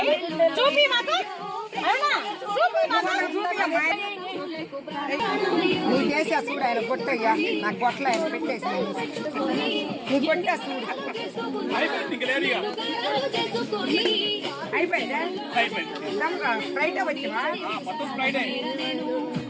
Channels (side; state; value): both; identical; correlation 1.00